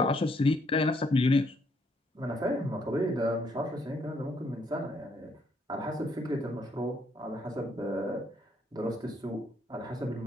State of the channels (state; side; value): normal; both; correlation 0.70